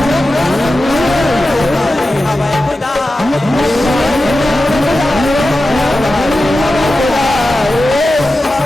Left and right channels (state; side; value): normal; both; correlation 0.93